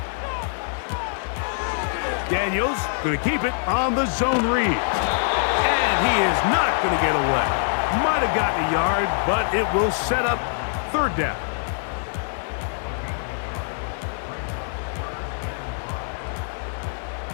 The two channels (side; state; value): right; silent; 63 dB below the other